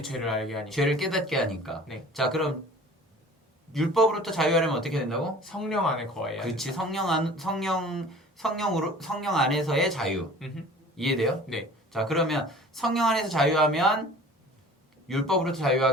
죄를 알게 하니까. 죄를 깨닫게 하니까. 네. 자, 그럼 율법으로부터 자유하려면 어떻게 된다고? 성령 안에 거해야 그렇지. 성령 안에서의 자유. 음흠. 이해돼요? 네. 자, 그러면 성령 안에서 자유하면 율법으로부터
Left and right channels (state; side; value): normal; both; correlation 0.45